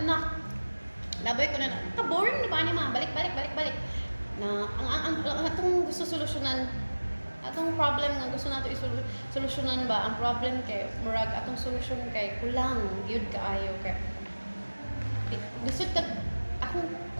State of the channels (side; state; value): both; inverted; correlation -1.00